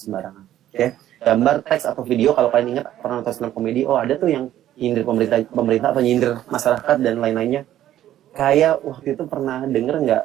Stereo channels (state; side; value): quieter; left; 12.5 dB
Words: Oke. Gambar, teks atau video kalau kalian ingat pernah nonton stand up comedy, ada tuh yang nyindir pemerintah atau nyindir masyarakat dan lain-lainnya. Kayak waktu itu pernah denger nggak